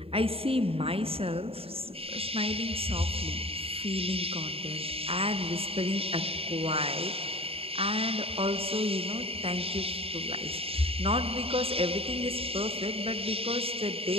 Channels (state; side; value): late; left; 0.28 ms